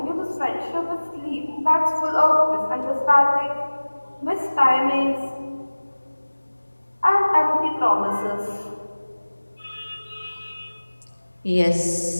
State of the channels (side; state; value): both; inverted; correlation -1.00